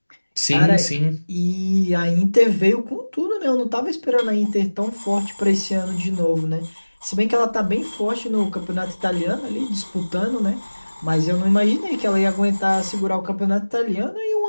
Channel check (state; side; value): inverted; both; correlation -1.00